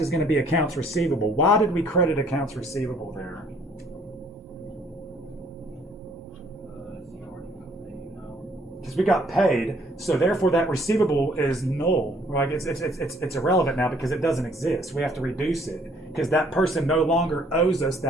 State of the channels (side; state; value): both; normal; correlation 0.62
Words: going to be accounts receivable. Why did we credit accounts receivable there? Because we got paid, so therefore that receivable is null, right? It's irrelevant now because it doesn't exist. We have to reduce it because that person no longer owes us